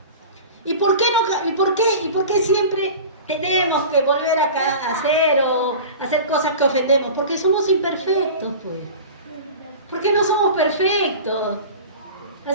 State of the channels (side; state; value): both; inverted; correlation -0.36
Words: ¿Y por qué siempre tenemos que volver a hacer cosas que ofendemos? Porque somos imperfectos, pues. Porque no somos perfectos.